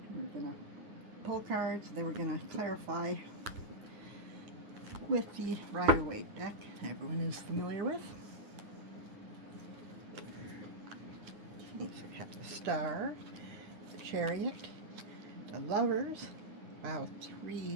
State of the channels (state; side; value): late; left; 9.6 ms